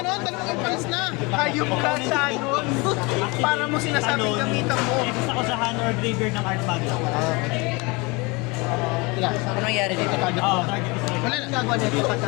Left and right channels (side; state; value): right; quieter; 26.8 dB